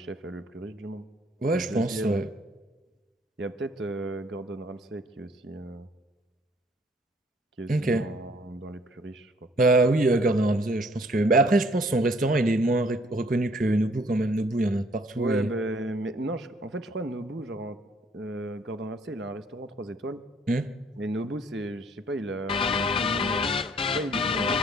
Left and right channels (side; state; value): both; normal; correlation 0.61